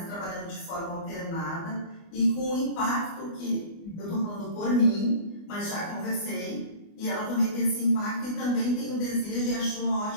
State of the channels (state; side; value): late; right; 24 ms